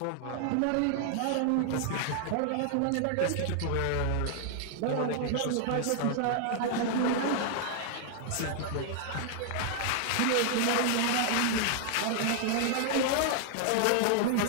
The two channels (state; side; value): different; both; correlation 0.00